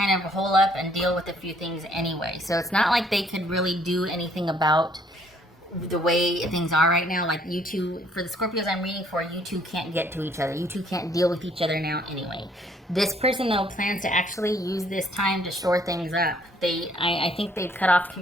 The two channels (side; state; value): both; normal; correlation 0.64